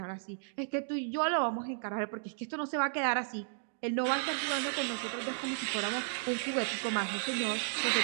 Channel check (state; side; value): silent; left; digital silence